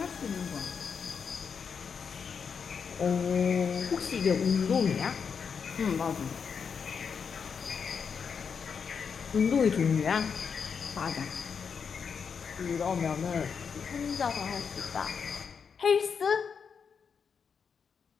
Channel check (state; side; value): quieter; right; 6.4 dB